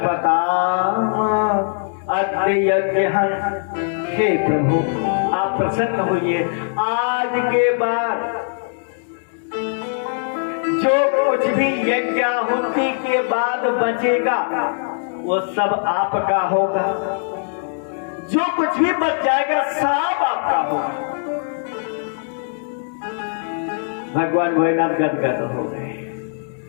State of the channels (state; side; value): silent; right; digital silence